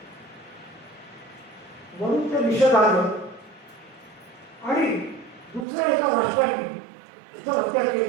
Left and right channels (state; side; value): drops out; left; at 5.7 s